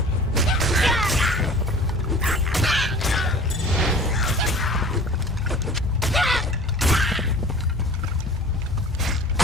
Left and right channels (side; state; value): both; normal; correlation 0.43